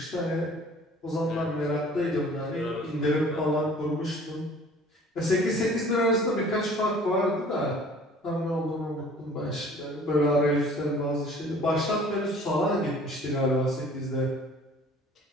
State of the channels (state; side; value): normal; both; correlation 0.50